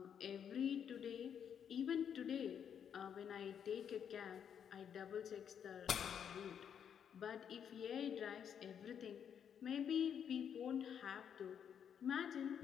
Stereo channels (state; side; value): quieter; right; 8.2 dB